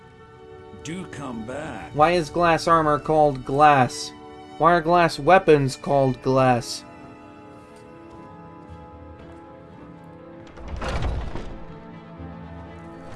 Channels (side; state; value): both; identical; correlation 1.00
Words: Do come back. Why is glass armor called glass? Why are glass weapons called glass?